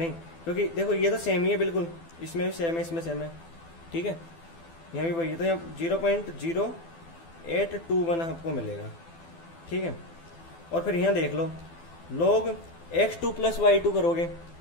क्योंकि देखो ये तो सेम ही है बिल्कुल, इसमें भी सेम है, इसमें सेम है, ठीक है, यहाँ भी वही है, तो यहाँ 0.0821 आपको मिलेगा, ठीक है। और फिर यहाँ देख लो log x2 प्लस y2 करोगे,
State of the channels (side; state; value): right; late; 12 ms